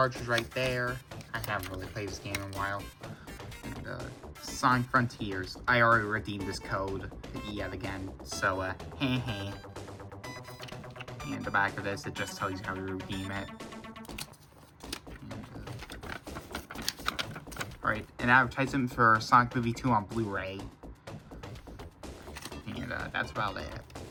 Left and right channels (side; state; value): both; identical; correlation 1.00